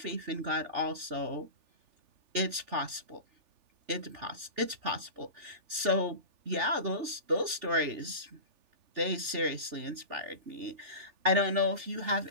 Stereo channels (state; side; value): late; left; 3.4 ms